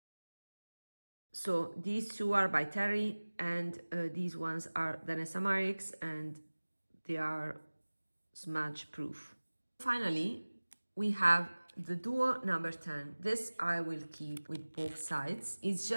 So these two are by Terry, and these ones are DANESSA MYRICKS, and they are smudge proof. Finally, we have the duo number 10. This I will keep with both sides. It's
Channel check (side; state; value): both; inverted; correlation -1.00